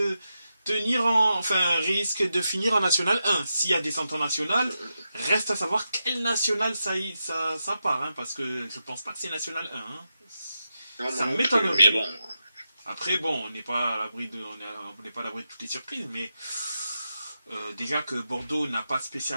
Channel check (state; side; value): inverted; both; correlation -0.88